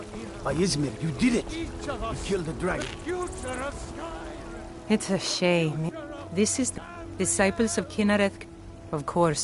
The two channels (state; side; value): identical; both; correlation 1.00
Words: By Izmir, you did it! You killed the dragon. It's a shame. This is the disciples of Kinnareth, of